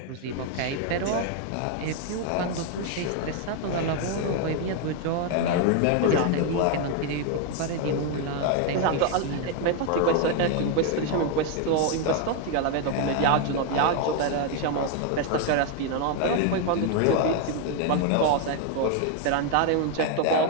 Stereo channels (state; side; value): different; both; correlation 0.01